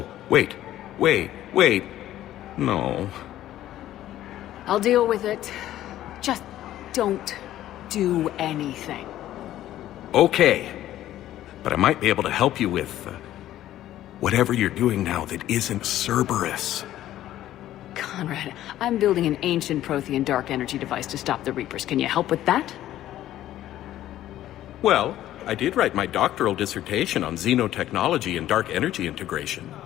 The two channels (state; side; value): quieter; right; 13.3 dB